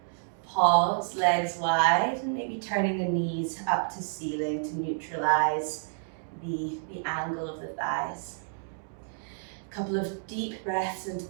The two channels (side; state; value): left; silent; digital silence